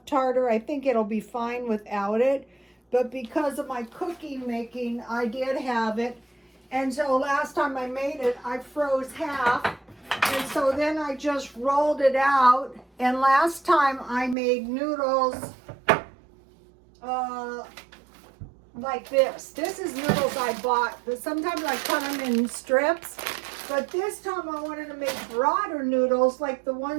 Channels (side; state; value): left; drops out; at 14.4 s